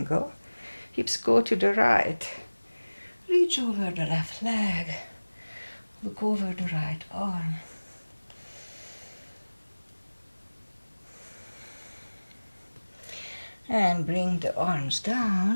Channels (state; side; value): inverted; both; correlation -1.00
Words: Hips go to the right. Reach over the left leg. Look over the right arm. And bring the arms